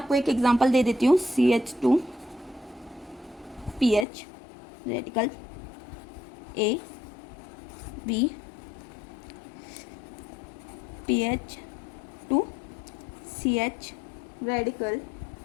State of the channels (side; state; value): right; drops out; at 4.0 s